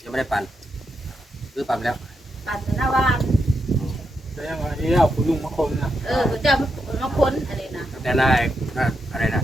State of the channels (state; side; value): normal; both; correlation 0.84